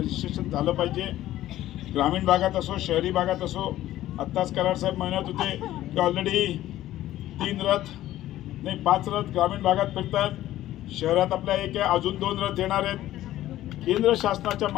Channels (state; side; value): quieter; right; 14.2 dB